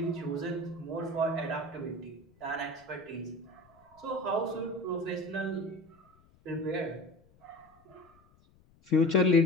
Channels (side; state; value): left; noise; rumble, 30 dB below the sound